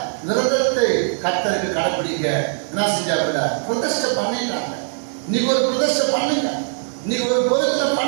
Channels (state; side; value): silent; left; 65 dB below the other